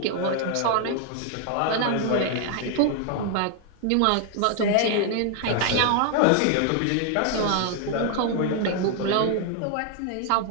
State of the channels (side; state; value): both; different; correlation 0.00